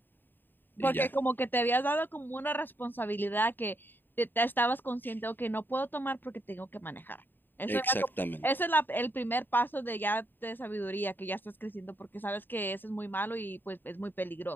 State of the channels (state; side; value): late; right; 0.093 ms